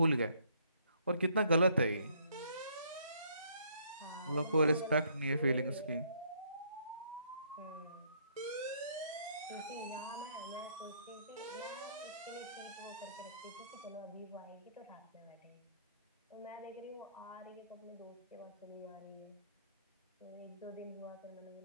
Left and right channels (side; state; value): both; inverted; correlation -0.67